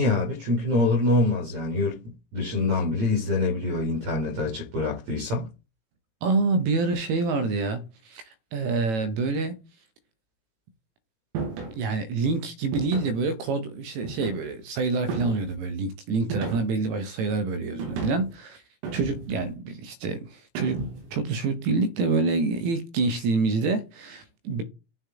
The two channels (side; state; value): left; late; 18 ms